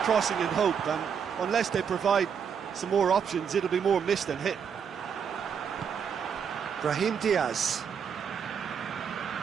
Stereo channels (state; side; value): quieter; left; 7.2 dB